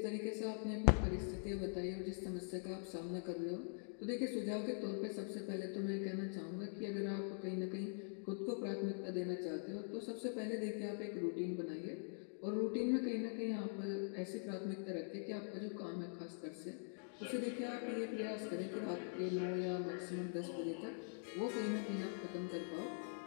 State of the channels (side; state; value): right; silent; digital silence